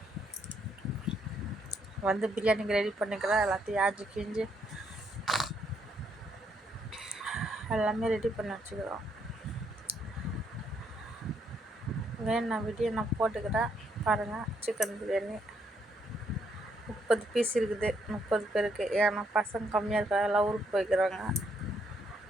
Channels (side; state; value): both; normal; correlation 0.73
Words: வந்து பிரியாணிக்கு ரெடி பண்ணிக்கிறேன். எல்லாத்தையும் ஆஞ்சி கிஞ்சி எல்லாமே ரெடி பண்ணி வச்சுக்கிறோம். வேணும் வீடியோ நான் போட்டுக்கிறேன். பாருங்கள், சிக்கன் பிரியாணி 30 பீஸ் இருக்குது, 30 பேருக்கு. ஏன்னா பசங்க கம்மியாக இருக்காங்க, எல்லாம் ஊருக்கு போய்க்கிறாங்க.